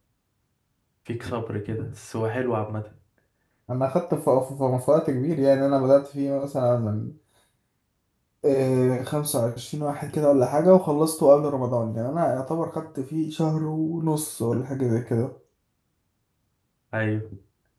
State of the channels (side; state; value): both; identical; correlation 1.00